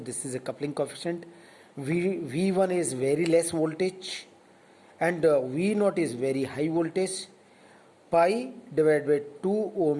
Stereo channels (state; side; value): identical; both; correlation 1.00